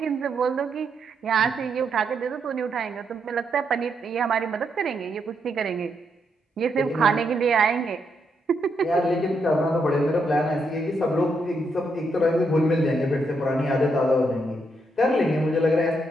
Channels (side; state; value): both; normal; correlation 0.79